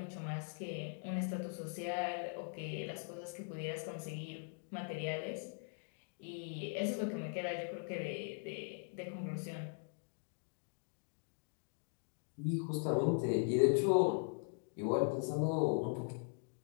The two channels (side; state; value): right; silent; 51 dB below the other